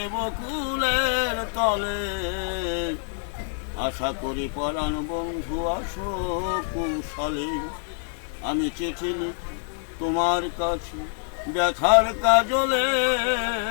বকুলের তলে, আশা করি পরাণ বন্ধু আসো কুশলে। আমি চিঠি লিখি তোমার কাছে ব্যথার কাজলে,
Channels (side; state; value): right; silent; 61 dB below the other